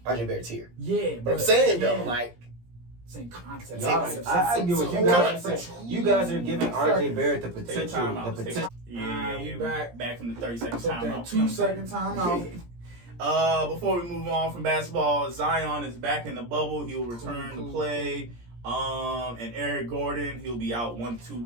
RJ Barrett's here. Yeah, But I'm saying though, yeah. like. Same concept. I get what you guys are saying. You guys are giving RJ Barrett the Take a potential. timeout. The potential. We Back from the 30-second Took that timeout. 2-second timeout. Before we move on from basketball, Zion is back in the bubble. He'll return to play. And Eric Gordon, he'll be out 1 to 2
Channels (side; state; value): left; late; 17 ms